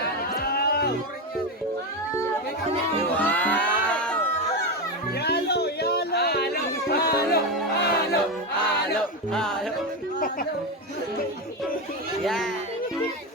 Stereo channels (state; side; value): normal; both; correlation 0.13